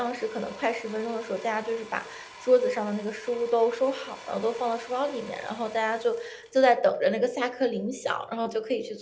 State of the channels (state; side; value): identical; both; correlation 1.00